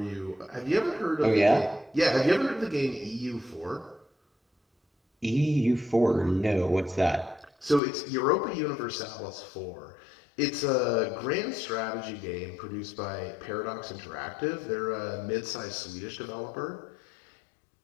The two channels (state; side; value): drops out; right; at 7.8 s